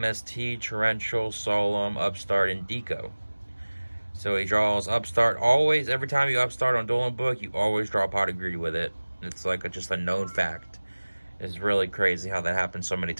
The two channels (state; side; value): inverted; both; correlation -1.00